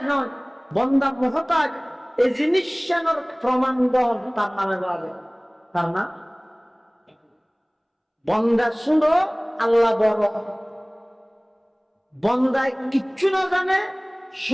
নয়, বান্দা মহতাজ। এই জিনিসটার প্রমাণ দেন তার নামে বলে, তার নাম বান্দা শুনো আল্লাহ বড়। বান্দায় কিচ্ছু না জানে,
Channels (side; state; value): both; identical; correlation 1.00